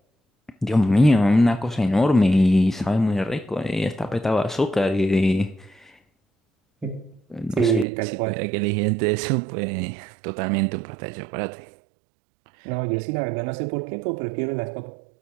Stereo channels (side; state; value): left; drops out; at 7.9 s